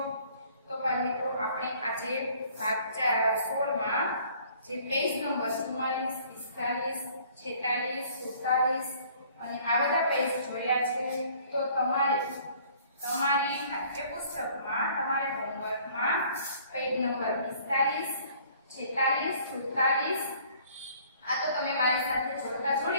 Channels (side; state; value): both; inverted; correlation -0.56